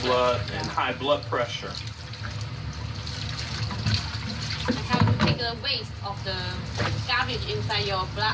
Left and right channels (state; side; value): identical; both; correlation 1.00